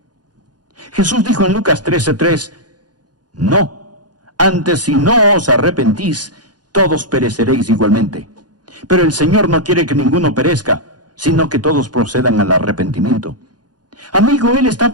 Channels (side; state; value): left; late; 0.69 ms